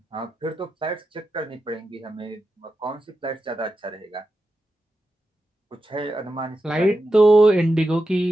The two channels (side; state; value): both; normal; correlation 0.90